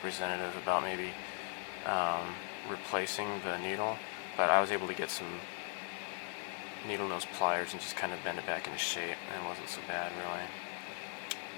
about maybe replacing the needle, but I was able to get some needle nose pliers and just kind of bend it back into shape, and it wasn't so bad, really.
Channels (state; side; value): silent; right; 52 dB below the other